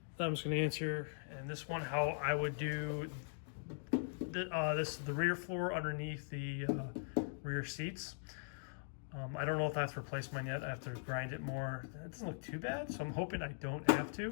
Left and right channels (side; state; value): right; silent; digital silence